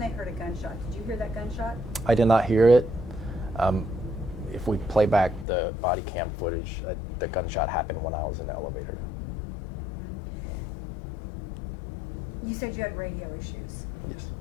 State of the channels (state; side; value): drops out; right; at 5.5 s